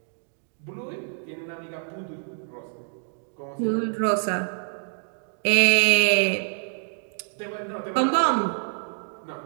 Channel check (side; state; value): left; silent; 61 dB below the other